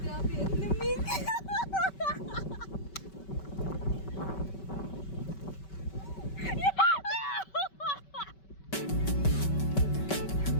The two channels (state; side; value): late; right; 5.2 ms